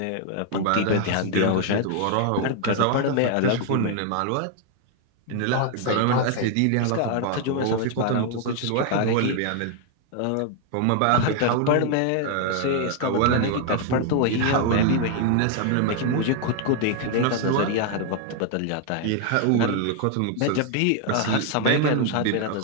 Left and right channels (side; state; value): both; different; correlation 0.00